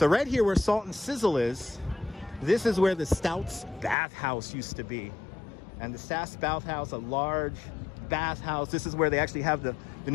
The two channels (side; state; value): right; drops out; at 4.0 s